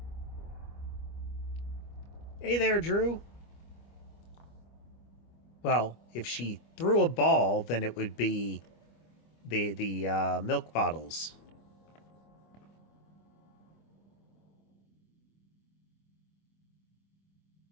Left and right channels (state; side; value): late; right; 25 ms